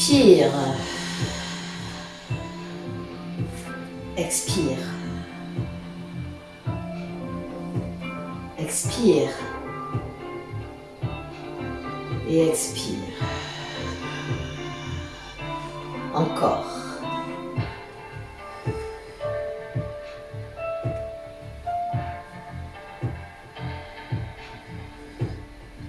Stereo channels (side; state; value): both; identical; correlation 1.00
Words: Expire. Expire. Et expire. Encore.